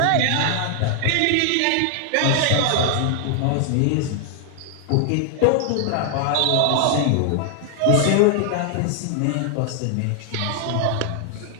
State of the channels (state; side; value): different; both; correlation 0.00